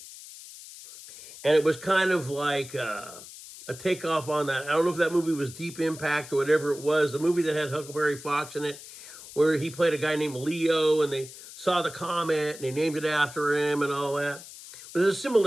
And it was kind of like a takeoff on that. I don't know if that movie was Deep Impact or whatever it was. The movie that had Huckleberry Fox in it, where he played a guy named Leo, and they saw the comet and they named it after him and all that. But there's a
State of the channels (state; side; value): noise; left; hiss, 16 dB below the sound